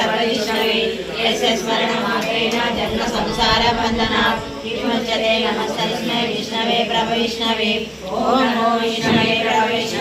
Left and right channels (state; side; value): identical; both; correlation 1.00